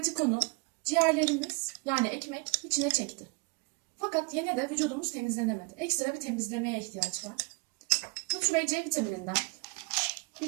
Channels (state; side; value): quieter; left; 31.7 dB